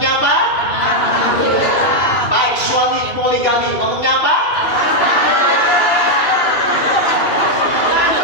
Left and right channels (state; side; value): late; right; 2.4 ms